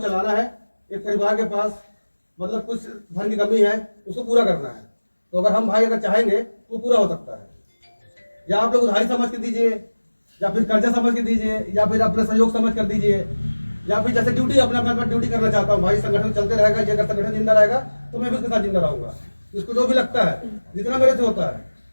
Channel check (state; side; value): inverted; both; correlation -1.00